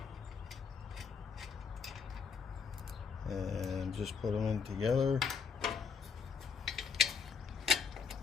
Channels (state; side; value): quieter; right; 5.8 dB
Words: And just put them in together.